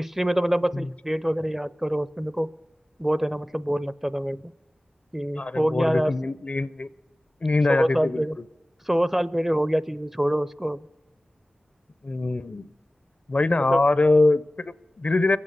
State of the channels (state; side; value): normal; both; correlation 0.97